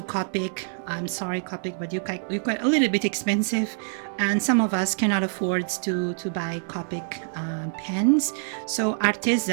Copic. I'm sorry, Copic, but you're quite a little bit expensive, and some of us cannot afford to buy Copic pens. So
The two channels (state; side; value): silent; left; digital silence